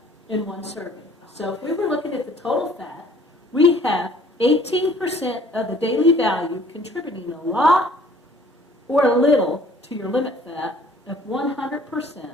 in one serving. So if we were looking at the total fat, we have 18% of the daily value contributing a lot or a little to your limit fat of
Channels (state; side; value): normal; both; correlation 0.55